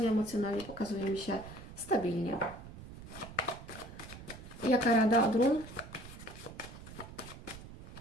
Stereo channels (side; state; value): right; noise; rumble, 14 dB below the sound